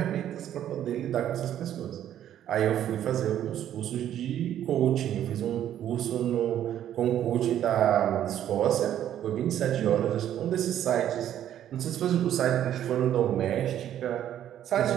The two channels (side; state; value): left; quieter; 11.0 dB